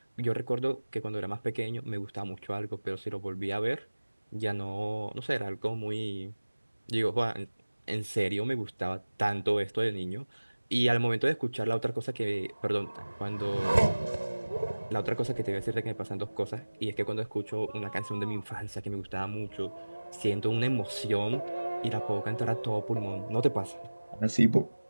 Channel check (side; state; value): both; inverted; correlation -1.00